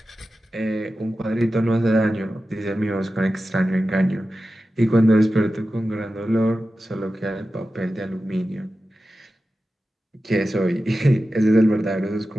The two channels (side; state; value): both; normal; correlation 0.93